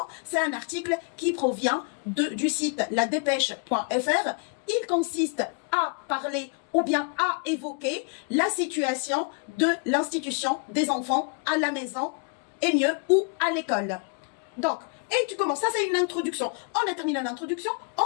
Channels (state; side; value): quieter; right; 38.6 dB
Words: C'est un article qui provient du site ladépêche.fr. Il consiste à parler ou bien à évoquer la situation de l'institution des enfants à la maison et mieux ou à l'école. Donc, et tu commences, ça c'est une introduction. On a terminé l'introduction,